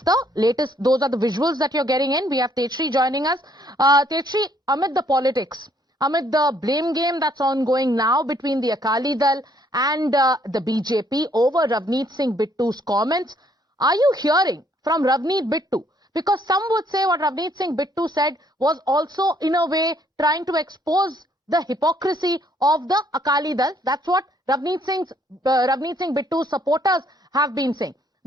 the latest. Those are the visuals that you're getting in. We have Tetri joining us. Tetri, amid the politics, amid the blame game that's ongoing now between the Akali Dal and the BJP over Ravneet Singh Bittu's comments, are you hearing from Ravneet Bittu? Because some would say what Ravneet Singh Bittu said was also, in a way, trying to expose the hypocrisy of the Akali Dal. That's what Ravneet Singh Bittu's supporters have been saying.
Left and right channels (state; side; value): normal; both; correlation 0.66